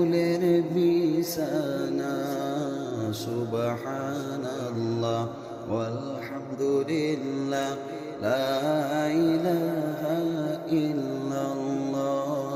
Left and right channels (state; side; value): identical; both; correlation 1.00